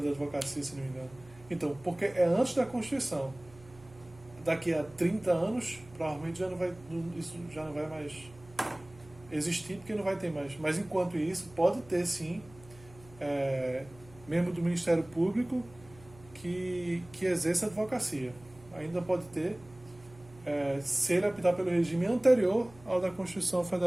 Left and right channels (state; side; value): noise; right; hum, 22 dB below the sound